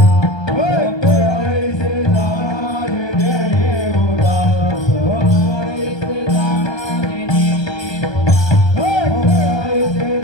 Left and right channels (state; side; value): late; right; 1.2 ms